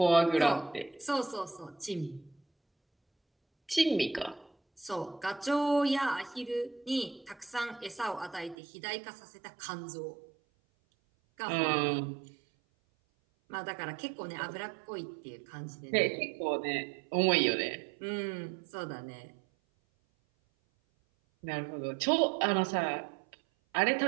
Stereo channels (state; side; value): drops out; left; at 8.6 s